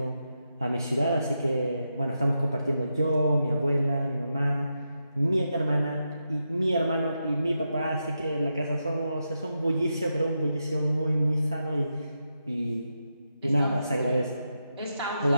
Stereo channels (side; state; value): both; inverted; correlation -0.86